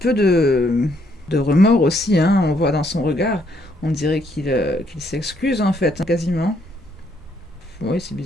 de remords aussi. Hein, on voit dans son regard. On dirait qu'il s'excuse en fait, quasiment. Oui, c'est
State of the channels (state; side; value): normal; both; correlation 0.71